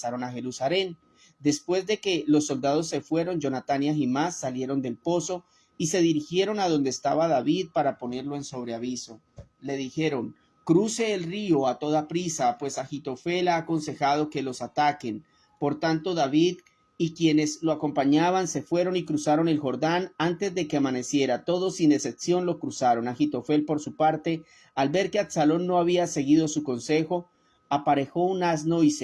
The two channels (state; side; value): identical; both; correlation 1.00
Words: a Jerusalén. Después de que los soldados se fueron, Jonatán y Ahimás salieron del pozo y se dirigieron a donde estaba David para ponerlo en sobreaviso. Le dijeron: cruce el río a toda prisa, pues Ahitofel ha aconsejado que los ataquen. Por tanto, David y quienes lo acompañaban se fueron y cruzaron el Jordán antes de que amaneciera. Todos sin excepción lo cruzaron. Ahitofel, por su parte, al ver que Absalón no había seguido su consejo, aparejó un asno y